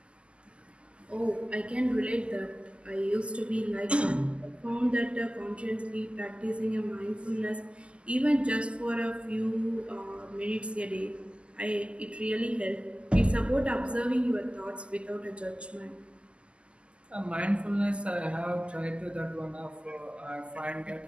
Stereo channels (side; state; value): left; late; 0.054 ms